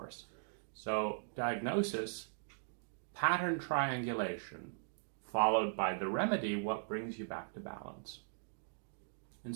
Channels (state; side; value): silent; left; digital silence